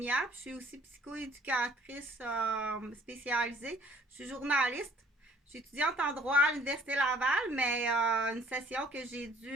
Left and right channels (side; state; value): both; normal; correlation 0.58